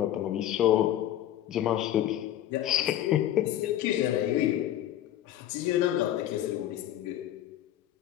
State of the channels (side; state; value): right; quieter; 12.2 dB